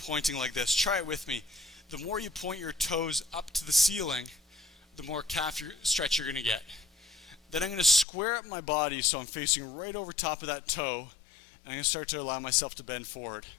like this. Try it with me. The more you point your toes up to the ceiling, the more calf stretch you're going to get. Then I'm going to square up my body so I'm facing right over top of that toe, and I'm going to start to allow myself to bend forward.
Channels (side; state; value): right; drops out; at 8.1 s